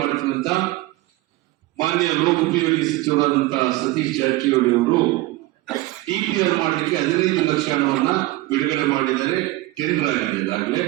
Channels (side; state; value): left; quieter; 18.6 dB